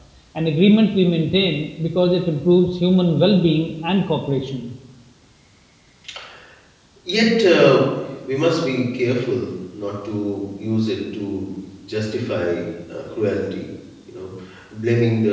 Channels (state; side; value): identical; both; correlation 1.00